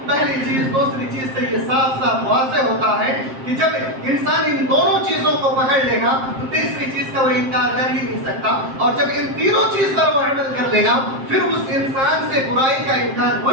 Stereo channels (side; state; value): left; late; 7.6 ms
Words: پہلی چیز دوسری چیز سے یہ صاف صاف واضح ہوتا ہے کہ جب انسان ان دونوں چیزوں کو پکڑ لے گا تو تیسری چیز کا وہ انکار کر ہی نہیں سکتا، اور جب ان تینوں چیز پر وہ عمل کر لے گا پھر اس انسان سے برائی کا انکار ہو